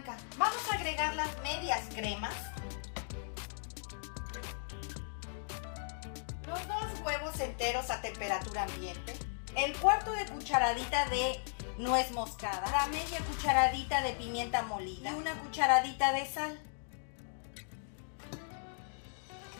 Vamos a agregar las medias cremas, los 2 huevos enteros a temperatura ambiente, el 1/4 de cucharadita de nuez moscada, la media cucharadita de pimienta molida y una cucharadita de sal.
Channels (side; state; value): right; silent; digital silence